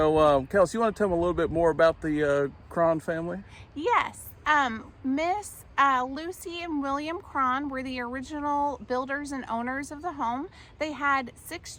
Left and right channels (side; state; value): both; identical; correlation 1.00